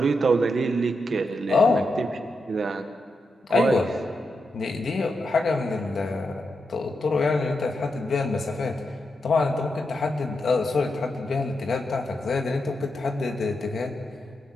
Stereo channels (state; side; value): normal; both; correlation 0.86